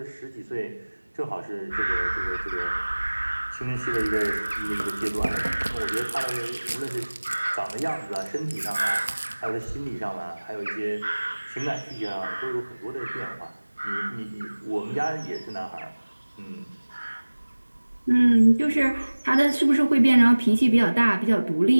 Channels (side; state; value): both; inverted; correlation -1.00